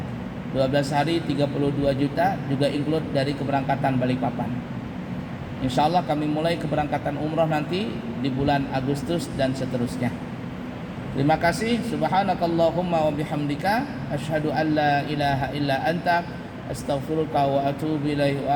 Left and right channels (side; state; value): both; identical; correlation 1.00